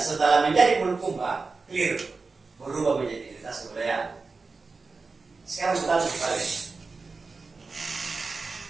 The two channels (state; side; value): quieter; left; 4.1 dB